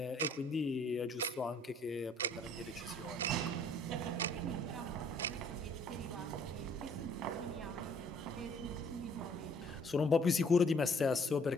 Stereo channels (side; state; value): both; normal; correlation 0.59